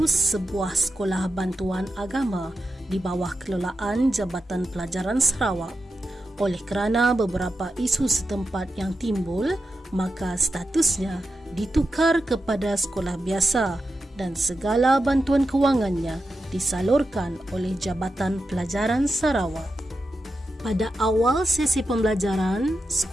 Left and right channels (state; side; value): normal; both; correlation 0.89